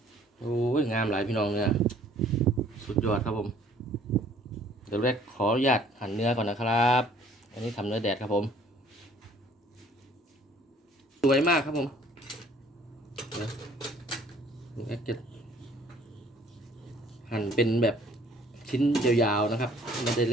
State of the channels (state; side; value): normal; both; correlation 0.57